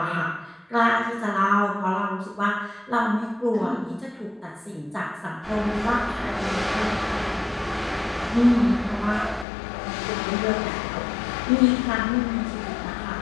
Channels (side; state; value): right; drops out; at 9.5 s